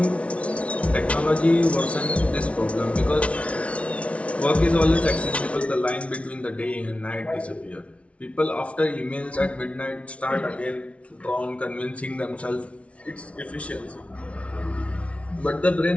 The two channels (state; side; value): late; right; 0.063 ms